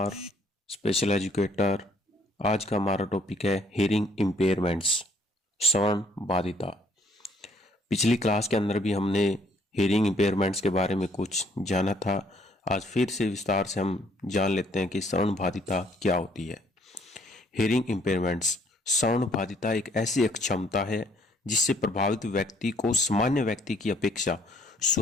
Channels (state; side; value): normal; both; correlation 0.64